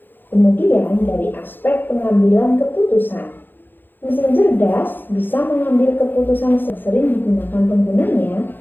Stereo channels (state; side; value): late; right; 0.094 ms